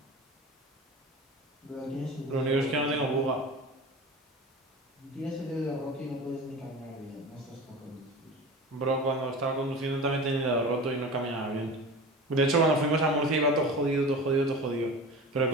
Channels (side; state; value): both; normal; correlation 0.33